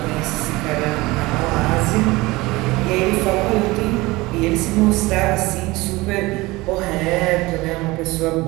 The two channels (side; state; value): left; quieter; 21.2 dB